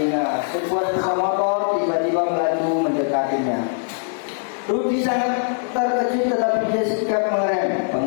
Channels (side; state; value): right; silent; digital silence